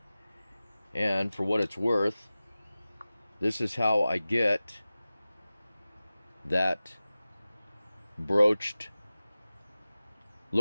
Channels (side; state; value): both; inverted; correlation -0.97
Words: and for what it's worth, this is how I get that broached